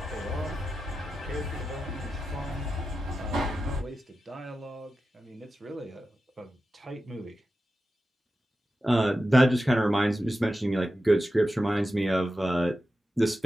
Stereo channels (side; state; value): both; normal; correlation 0.92